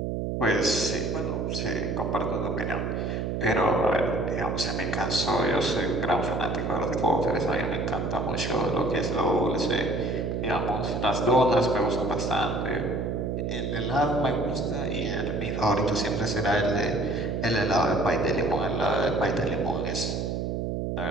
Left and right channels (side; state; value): right; noise; hum, 1 dB below the sound